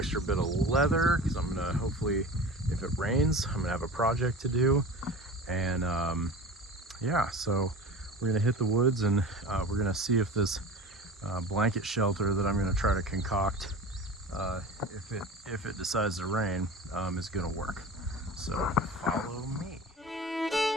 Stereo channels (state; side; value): normal; both; correlation 0.35